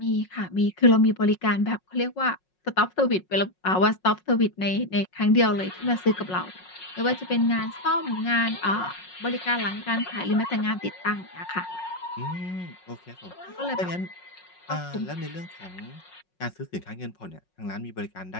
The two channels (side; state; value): right; late; 5.5 ms